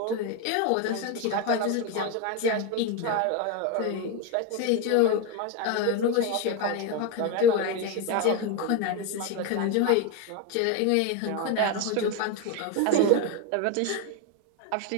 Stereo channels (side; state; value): both; different; correlation 0.02